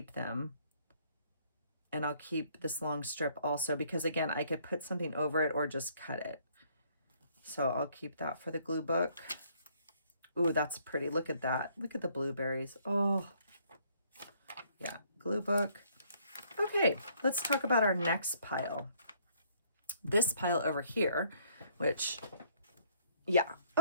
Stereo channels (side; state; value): both; inverted; correlation -0.64